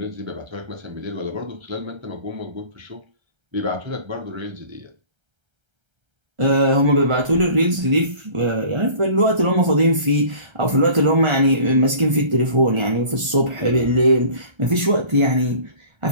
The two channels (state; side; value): late; left; 1.3 ms